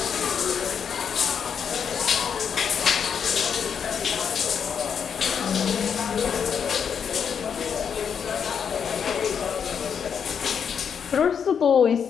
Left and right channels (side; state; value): right; quieter; 7.3 dB